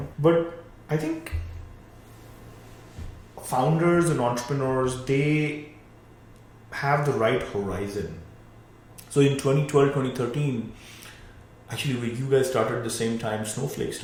But I think founders and entrepreneurs, they have the right horizon. So in 2012, 2013, actually when you guys started at the same time Snowflake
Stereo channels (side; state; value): both; identical; correlation 1.00